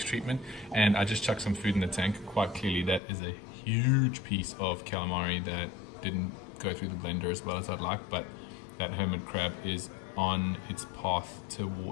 treatment, and I just chucked some food in the tank. Quite clearly that is a huge piece of calamari that didn't go through the blender as well as I'd like, but that hermit crab is on its path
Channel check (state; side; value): drops out; right; at 3.0 s